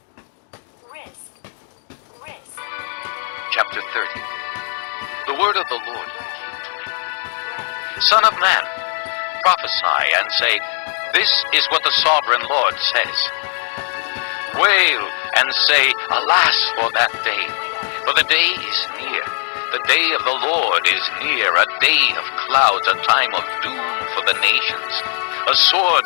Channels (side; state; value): right; silent; 56 dB below the other